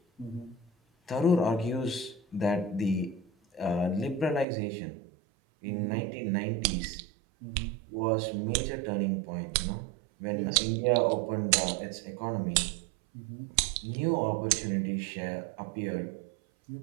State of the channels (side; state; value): left; drops out; at 4.5 s